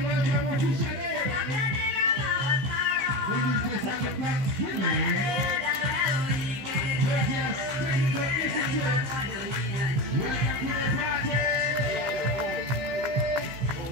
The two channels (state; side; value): late; left; 15 ms